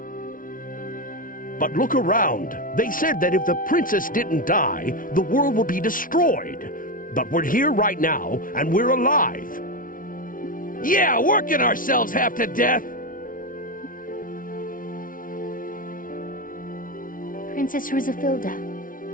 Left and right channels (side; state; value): right; late; 0.39 ms